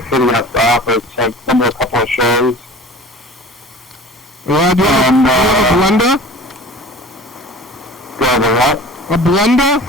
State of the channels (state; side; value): normal; both; correlation 0.41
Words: city has to offer. So I've been to a couple of shows. Yeah, do you have a blender? Do I have a what? A blender?